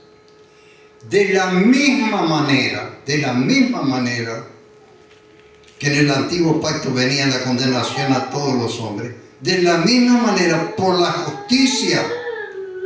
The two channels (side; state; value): both; identical; correlation 1.00